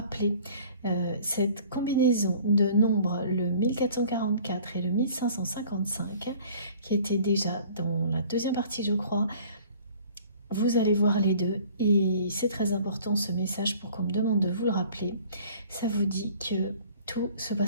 cette combinaison de nombres, le 1444 et le 1555, qui était déjà dans la deuxième partie, je crois. Vous allez voir les deux, et c'est très important ce message pour qu'on me demande de vous le rappeler. Ça vous dit que tout se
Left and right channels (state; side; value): inverted; both; correlation -0.51